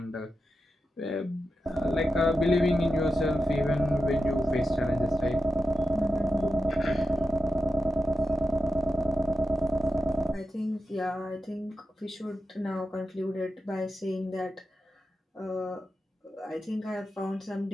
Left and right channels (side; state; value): both; normal; correlation 0.90